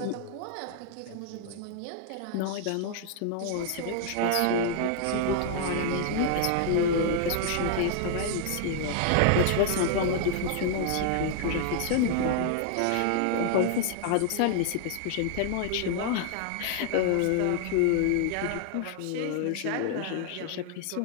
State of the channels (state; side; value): different; both; correlation -0.01